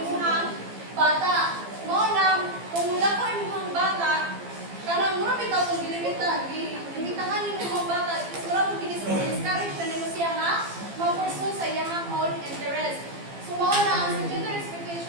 bata. Mo lang, kung wala ko imuhang bata, kanang mura bitaw kung limitahan ni imuhang bata, is mura kung discourage na nimo siya nga, ma-pursue sa iyang own interest. So mo na ang gender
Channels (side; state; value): left; late; 15 ms